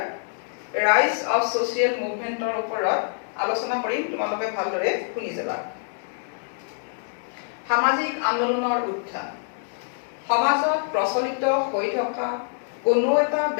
ৰাইজ অফ ছ'চিয়েল মুভমেণ্টৰ ওপৰত আলোচনা কৰিম। তোমালোকে ভালদৰে শুনি যাবা। সামাজিক আন্দোলনৰ উত্থান। সমাজত প্ৰচলিত হৈ থকা কোনো এটা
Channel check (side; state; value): right; silent; digital silence